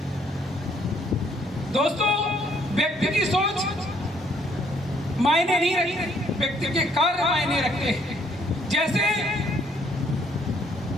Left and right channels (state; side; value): normal; both; correlation 0.66